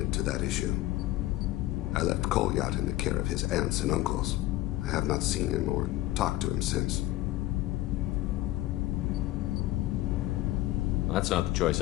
to that issue. I left Kolyat in the care of his aunts and uncles. I have not seen him or talked to him since. That's not the choice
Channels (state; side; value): quieter; right; 16.6 dB